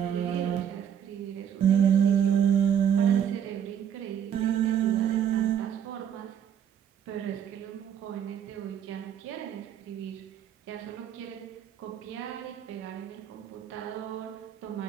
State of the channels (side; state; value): left; quieter; 9.0 dB